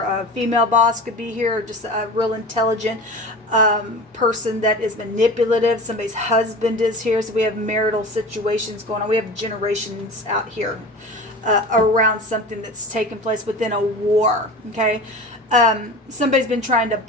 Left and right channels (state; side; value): normal; both; correlation 0.34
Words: female boss could be here, or just a real intelligent person that is manipulative. Somebody's husband is here, so we have marital situations going on. We have generations out here around something that's taken place within a war. Okay. Somebody's been trying to